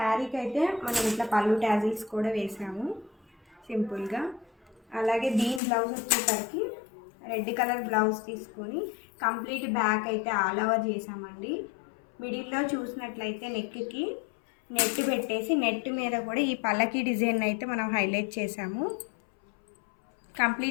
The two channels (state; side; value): drops out; right; at 5.6 s